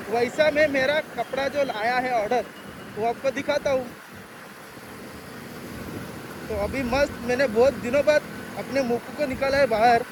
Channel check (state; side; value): identical; both; correlation 1.00